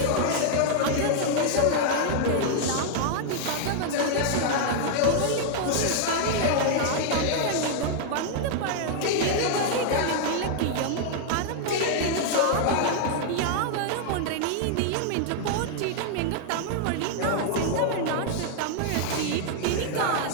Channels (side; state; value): both; different; correlation -0.01